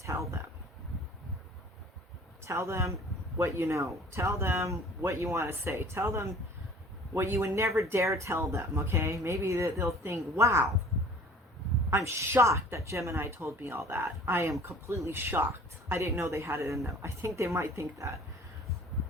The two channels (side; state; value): both; normal; correlation 0.49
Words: tell them. Tell them what you know. Tell them what you want to say. Tell them what you would never dare tell them, okay? Maybe they'll think, wow, I'm shocked that Gemini told me all that. I am completely shocked. I didn't know they had it in them. I think they might think that.